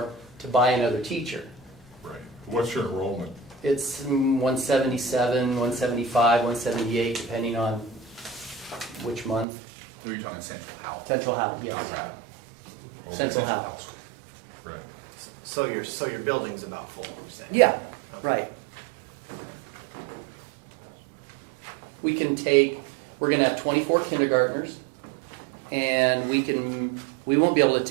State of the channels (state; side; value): drops out; left; at 9.5 s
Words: to buy another teacher. Right. What's your enrollment? It's 177, 175, 178, depending on which month. You're talking Central Howell. Central Howell, yes. Oh, Central Howell. Right. So your building's about full, you're saying? Yeah, right. We're going to have 24 kindergartners, and we won't be able to